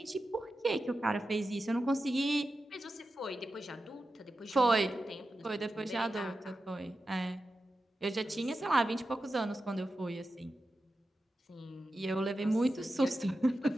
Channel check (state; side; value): normal; both; correlation 0.92